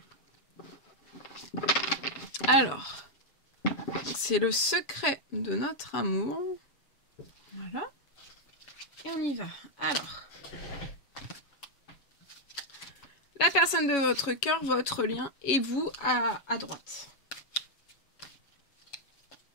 Alors, c'est le secret de notre amour. Voilà. Et on y va. Alors, la personne de votre cœur, votre lien, et vous à droite.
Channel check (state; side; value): late; right; 7.0 ms